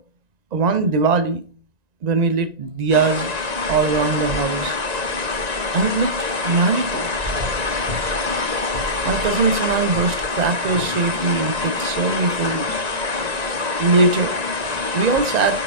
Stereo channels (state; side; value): late; left; 1.9 ms